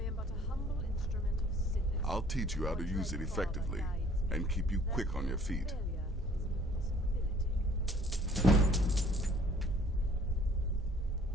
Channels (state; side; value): normal; both; correlation 0.56